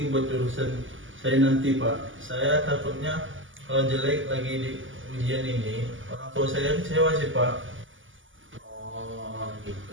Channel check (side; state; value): left; late; 0.57 ms